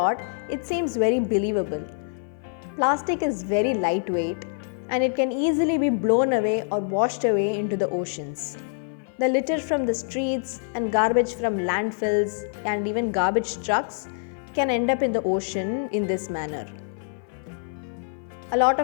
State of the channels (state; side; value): silent; right; 55 dB below the other